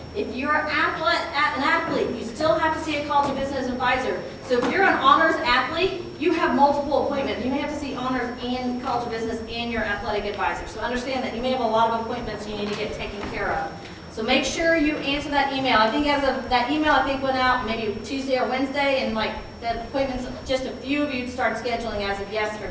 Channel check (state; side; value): identical; both; correlation 1.00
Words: If you're an athlete, you still have to see a College of Business advisor. So if you're an honors athlete, you have multiple appointments. You may have to see honors and College of Business and your athletic advisor. So understand that you may have a lot of appointments you need to get taken care of. So make sure you answer that email. I think as of that email, I think went out maybe Tuesday or Wednesday, and like the appointments, just a few of you start scheduling as of